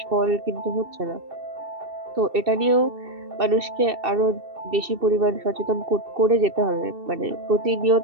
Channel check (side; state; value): left; late; 2.7 ms